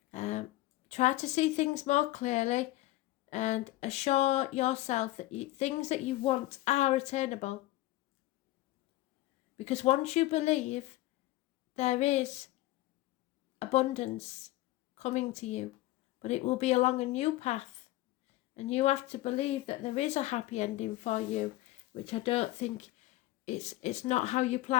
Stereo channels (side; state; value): right; quieter; 17.4 dB